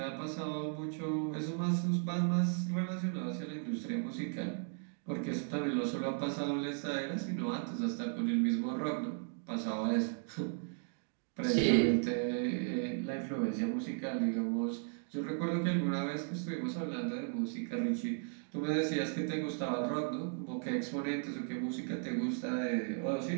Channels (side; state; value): left; silent; 54 dB below the other